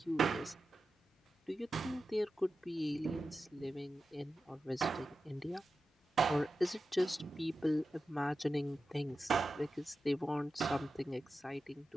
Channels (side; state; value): both; normal; correlation 0.92